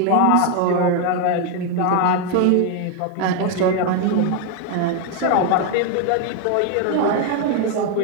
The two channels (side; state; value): both; different; correlation 0.01